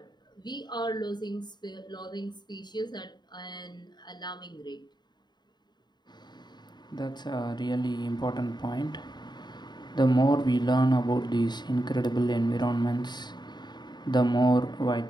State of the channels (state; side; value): late; right; 0.21 ms